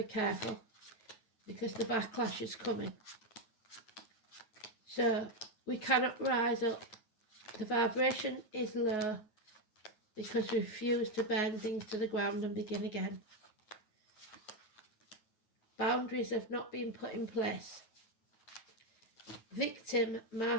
careful, because the backlash is coming. So we cannot rise up. The vibration is low because we refuse to burn things to the ground and begin again. Boundaries have not been put in place. Victim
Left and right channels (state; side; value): late; right; 9.3 ms